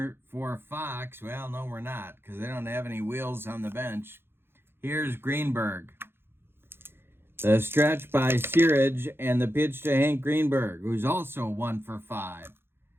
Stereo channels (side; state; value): left; late; 0.11 ms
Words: for Fox. Well, no, we're not, because they don't have any wheels on the bench. Here's Greenberg. The stretch by Searage and the pitch to Hank Greenberg, who's also 1 for 5.